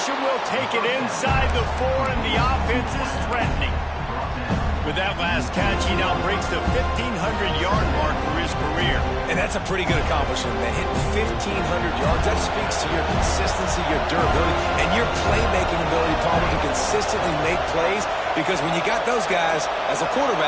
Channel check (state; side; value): identical; both; correlation 1.00